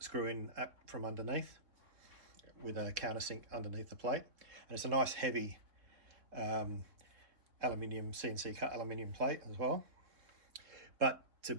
in up from underneath with a countersink underneath the plate, and it's a nice heavy aluminium, CNC cut aluminium plate as well. But to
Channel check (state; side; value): late; left; 3.7 ms